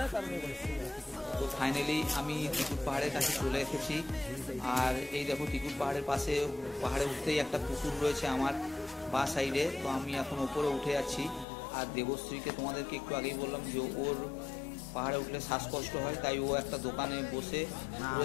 তো ফাইনালি আমি ত্রিকুট পাহাড়ের কাছে চলে এসেছি। আর এই দেখো ত্রিকুট পাহাড়ের পাশে, পাহাড়ে উঠতেই একটা পুকুর রয়েছে আমার বা সাইডে। তো আমি এখন ওপরে উঠে যাচ্ছি। আর দেবশ্রীকে তোমাদেরকে একটু আগেই বললাম যে ওর পাহাড়ে উঠলে শ্বাসকষ্ট হয়, তাই ও একটা দোকানে বসে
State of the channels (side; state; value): right; drops out; at 11.5 s